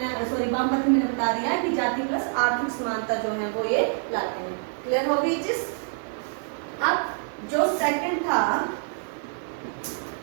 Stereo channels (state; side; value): silent; left; digital silence